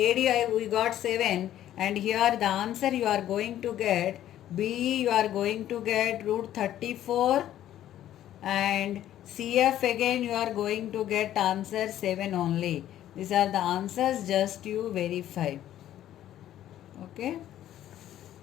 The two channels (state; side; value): quieter; right; 12.2 dB